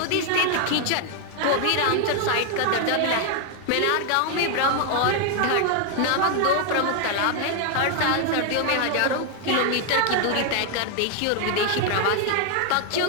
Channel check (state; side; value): different; both; correlation 0.00